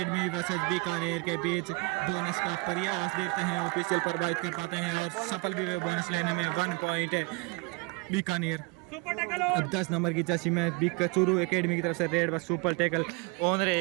वर्सेस बीकानेर के बीच। बोनस का प्रयास देखते हैं ऑफिशियल प्रभावित कर पाते हैं और सफल भी बोनस लेने में। 1 पॉइंट है बीकानेर। अब 10 नंबर की जर्सी में चूरू एकेडमी की तरफ से रेड पर सुपर टैकल ऑन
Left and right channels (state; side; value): quieter; left; 27.6 dB